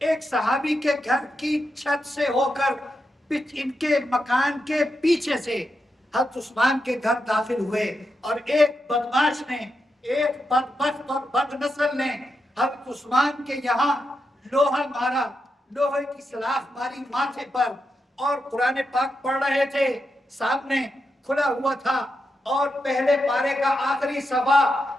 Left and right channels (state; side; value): normal; both; correlation 0.86